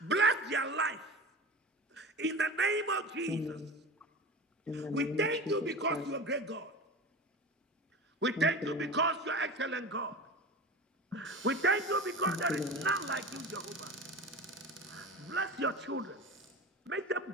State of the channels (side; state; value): both; normal; correlation 0.32